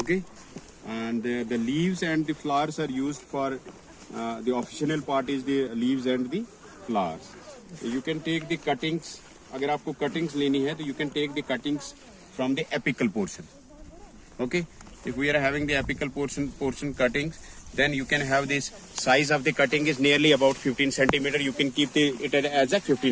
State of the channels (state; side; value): identical; both; correlation 1.00